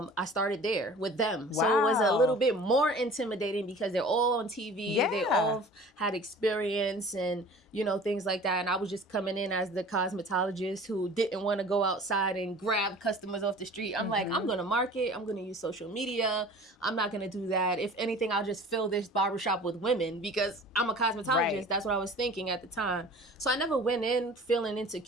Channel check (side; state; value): both; normal; correlation 0.44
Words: started there with them. Wow. So it was a little bit more intimidating because they're all on TV. Yeah. They all had experience and, you know, things like that. And I was just coming in as the cosmetologist who didn't want to go outside and grab customers off the street. I'm like, I'm going to market. I'm going to use social media. I'm not going to do that. If anything, I'll just fill this barbershop with women because I'm a cosmetologist. Right. That's what I was thinking at the time. So I never went in feeling